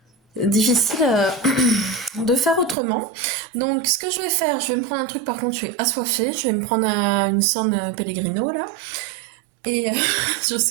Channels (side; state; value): left; drops out; at 2.8 s